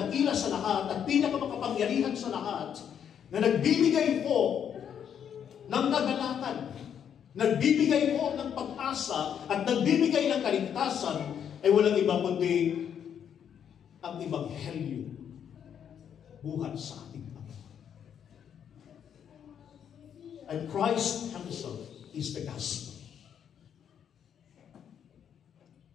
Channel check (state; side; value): quieter; right; 8.5 dB